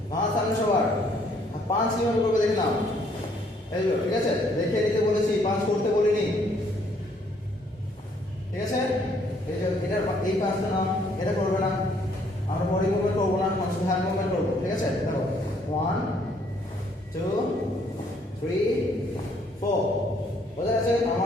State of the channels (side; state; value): both; normal; correlation 0.65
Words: মাথা সামনে সবার 5 কিভাবে করবে দেখে নাও এই যে ঠিক আছে দেখে নিতে বলেছি 5 করতে বলিনি ঠিক আছে এই যে এটার এই 5টা নাও এটা করবে না আমরা বডি মুভমেন্ট করব না আমরা শুধু হ্যান্ড মুভমেন্ট করব ঠিক আছে দেখো 1 2 3 4 বোঝা গেছে